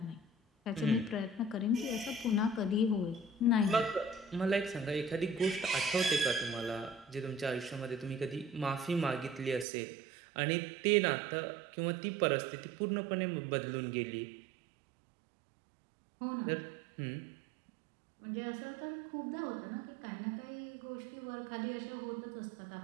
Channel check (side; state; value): left; drops out; at 9.7 s